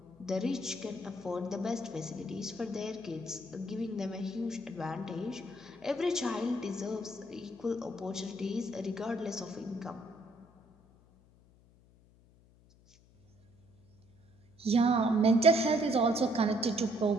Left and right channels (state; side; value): noise; left; hum, 28 dB below the sound